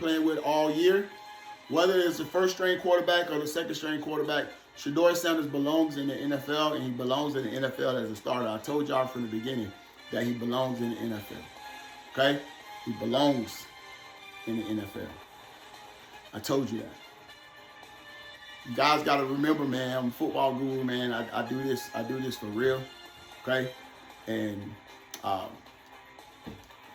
with all year. Whether it's the first string quarterback or the second string quarterback, Shedeur Sanders belongs in the NFL, and he belongs in the NFL as a starter. I told y'all from the beginning that he belongs in the NFL. Okay? He belongs in the NFL. I told you that. You guys got to remember, man, I'm a football guru, man. I do this for real. Okay? And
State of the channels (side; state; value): both; identical; correlation 1.00